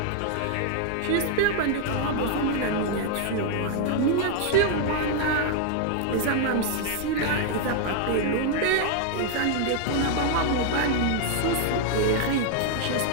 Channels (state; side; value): different; both; correlation 0.00